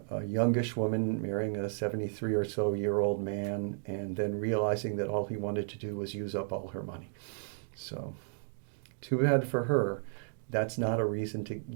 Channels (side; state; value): left; silent; digital silence